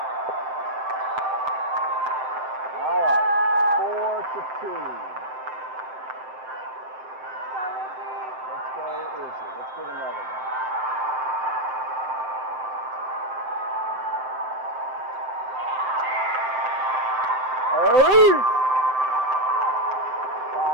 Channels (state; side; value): late; left; 7.7 ms